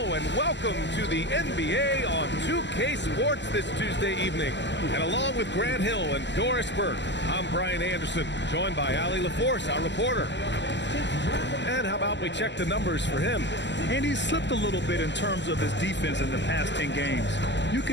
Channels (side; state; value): right; late; 0.52 ms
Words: and welcome to the NBA on 2K Sports this Tuesday evening. And along with Grant Hill and Doris Burke, I'm Brian Anderson, joined by Ali LaForce, our reporter. And how about we check the numbers for him? And he's slipped a little bit in terms of his defense in the past 10 games. You